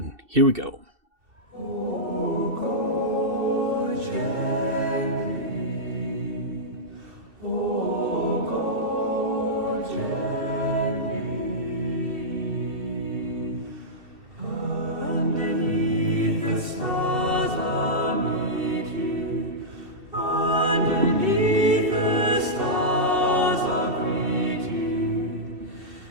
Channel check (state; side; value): late; left; 2.7 ms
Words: Here we go.